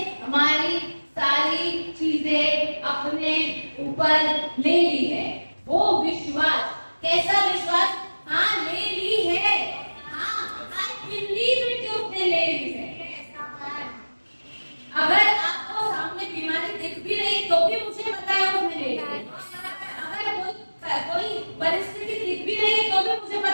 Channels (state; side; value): inverted; both; correlation -1.00